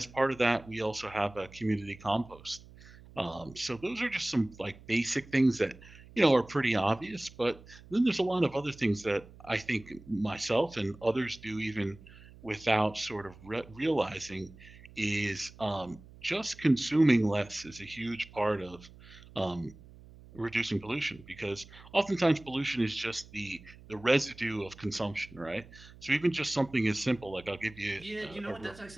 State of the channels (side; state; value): right; noise; hum, 21 dB below the sound